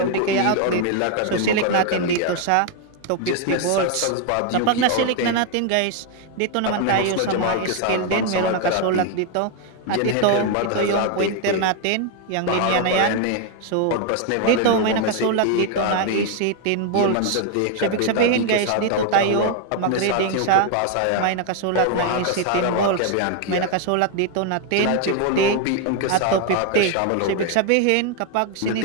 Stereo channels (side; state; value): both; different; correlation 0.01